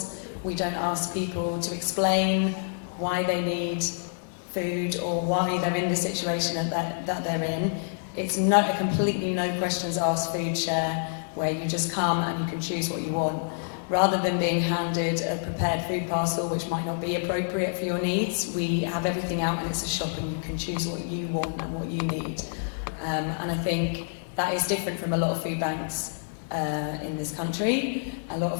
we don't ask people to explain why they need food or why they're in the situation that they're in. It's not a completely no questions asked food share where you just come and you can choose what you want. Rather than being handed a prepared food parcel which might not be appropriate for your needs, we have everything out and it's a shop and you can choose what you want and what you need. And I think that is different from a lot of food banks in this country. A lot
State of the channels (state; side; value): silent; right; 60 dB below the other